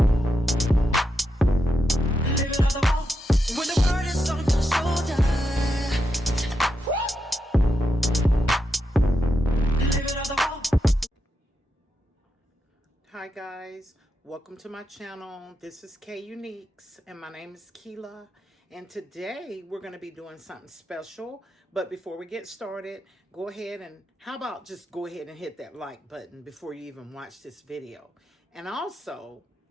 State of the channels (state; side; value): normal; both; correlation 0.85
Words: live it on the wall. When the world is on your shoulder, live it on the wall. Hi guys, welcome to my channel. This is K Uniques and my name is Keela, and today we're going to be doing something special. But before we get started, go ahead and how about just go ahead and hit that like button before you even watch this video, and also